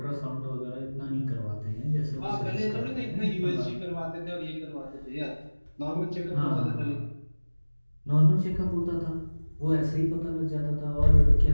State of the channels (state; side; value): inverted; both; correlation -1.00